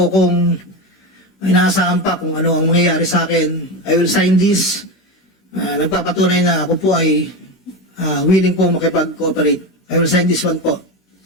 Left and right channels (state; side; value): late; right; 16 ms